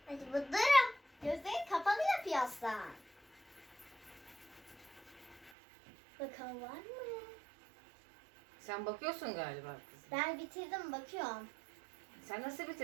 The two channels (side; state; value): left; drops out; at 5.5 s